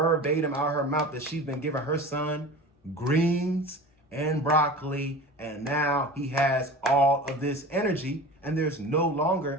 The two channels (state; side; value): normal; both; correlation 0.36